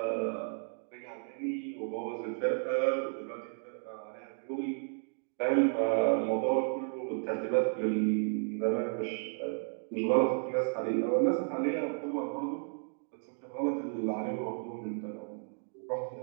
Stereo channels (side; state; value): left; silent; 56 dB below the other